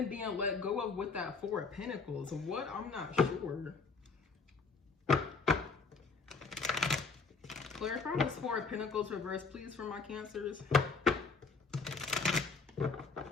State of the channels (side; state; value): right; quieter; 4.5 dB